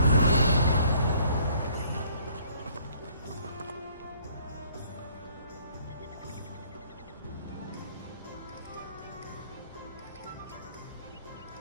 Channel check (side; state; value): both; inverted; correlation -0.61